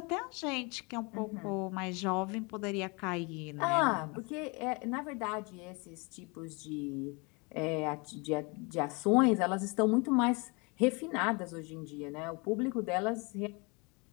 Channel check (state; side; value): quieter; right; 29.4 dB